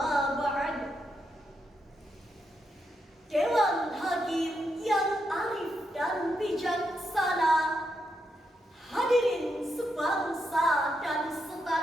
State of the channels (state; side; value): normal; both; correlation 0.82